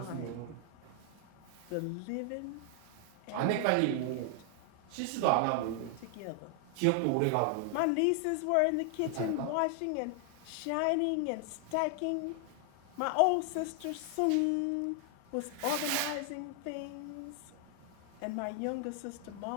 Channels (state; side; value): different; both; correlation 0.00